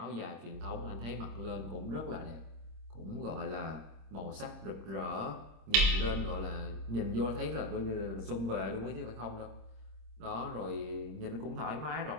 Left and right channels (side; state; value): left; late; 26 ms